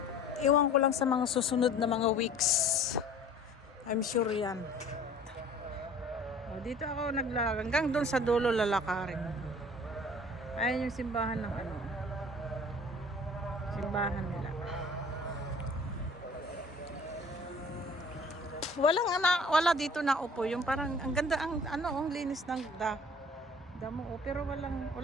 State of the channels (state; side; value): normal; both; correlation 0.48